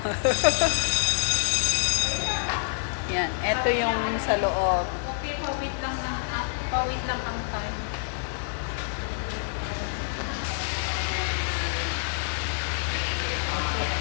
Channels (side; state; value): right; silent; digital silence